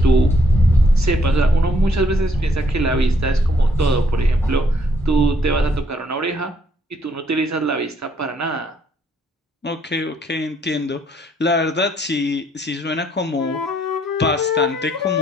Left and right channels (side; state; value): both; normal; correlation 0.69